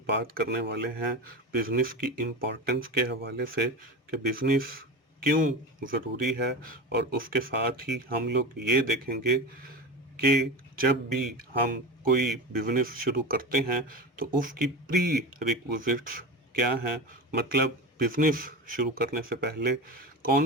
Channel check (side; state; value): both; normal; correlation 0.26